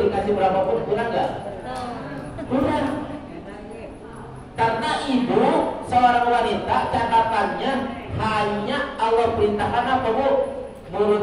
dikasih berapapun kurang nggak? Kurang. Karena ibu seorang wanita catatannya hanya Allah perintahkan apa Bu?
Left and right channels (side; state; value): both; identical; correlation 1.00